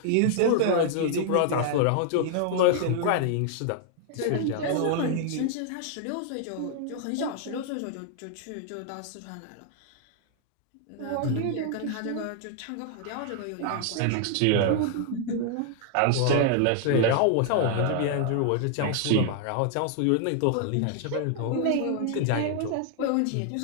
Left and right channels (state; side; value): different; both; correlation 0.00